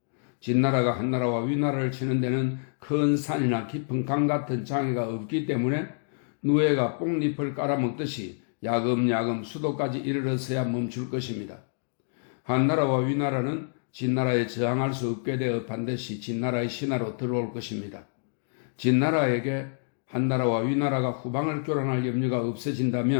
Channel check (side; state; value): right; silent; digital silence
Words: 진나라가 한나라와 위나라를 치는 데는 큰 산이나 깊은 강 같은 장애가 없기 때문에 누에가 뽕잎을 깔아먹듯이 야금야금 수도까지 이르러서야 멈출 것입니다. 한나라와 위나라는 진나라에 저항할 수 없게 되어 반드시 진나라의 신하로 들어올 것입니다. 진나라에게 한나라와 위나라가 후방을 교란할 염려가